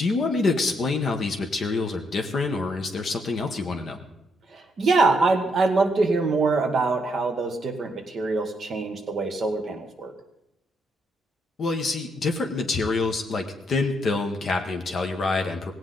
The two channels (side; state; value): both; normal; correlation 0.75